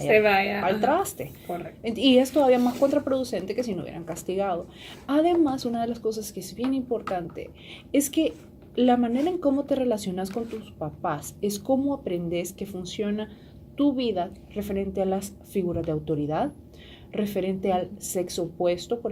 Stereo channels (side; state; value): both; identical; correlation 1.00